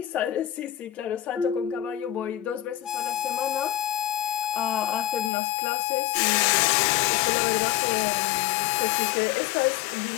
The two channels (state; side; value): drops out; right; at 5.3 s